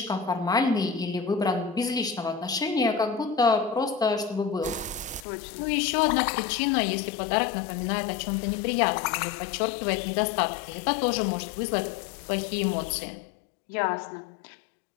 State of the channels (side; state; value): right; drops out; at 5.2 s